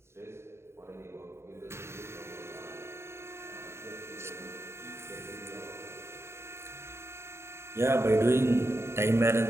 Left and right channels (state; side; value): late; left; 0.13 ms